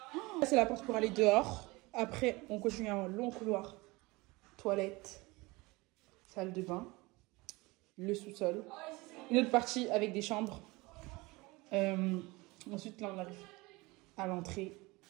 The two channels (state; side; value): quieter; left; 23.2 dB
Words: Ça, c'est la porte pour aller dehors. Après, on continue un long couloir. Toilette, salle de bain, le sous-sol. Une autre partie avec des chambres. Ensuite, là, on arrive à l'entrée.